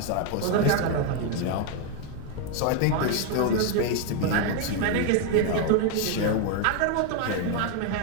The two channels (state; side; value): different; both; correlation 0.01